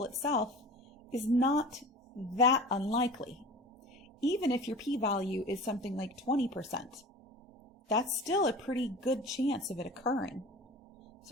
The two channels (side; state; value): both; normal; correlation 0.38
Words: itself is not that unlikely. Even if your p-value is something like 20%, that's still a pretty good chance of it occurring.